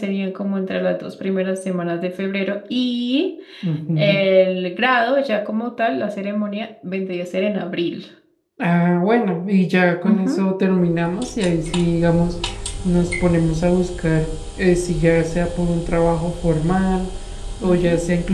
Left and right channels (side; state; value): both; identical; correlation 1.00